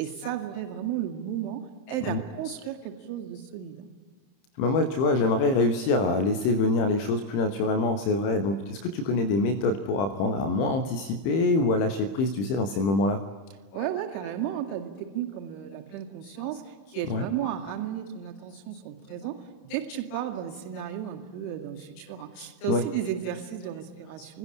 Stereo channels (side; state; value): right; late; 31 ms